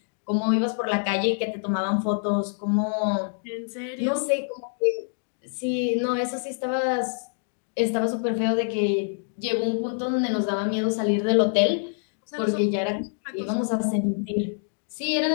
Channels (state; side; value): silent; right; 61 dB below the other